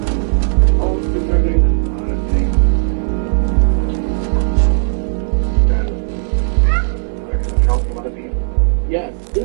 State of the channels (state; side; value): silent; left; digital silence